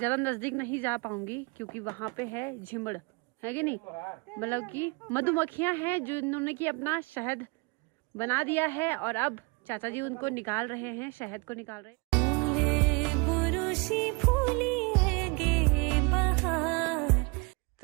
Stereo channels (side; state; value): left; quieter; 29.0 dB